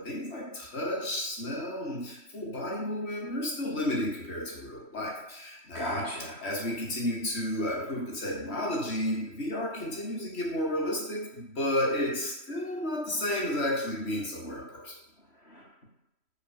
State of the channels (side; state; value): right; late; 3.1 ms